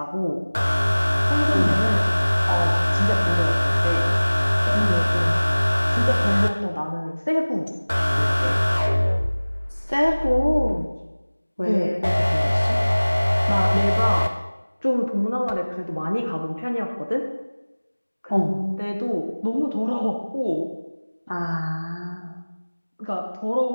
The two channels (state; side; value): inverted; both; correlation -1.00